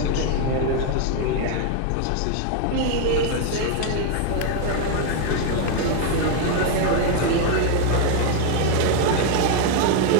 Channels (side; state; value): both; different; correlation 0.00